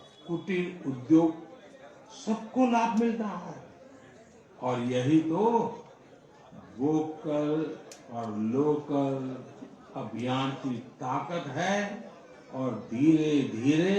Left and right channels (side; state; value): both; identical; correlation 1.00